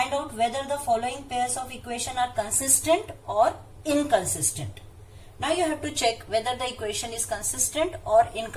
out whether the following pairs of equation are consistent or inconsistent. Now you have to check whether the equation is consistent or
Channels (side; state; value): both; identical; correlation 1.00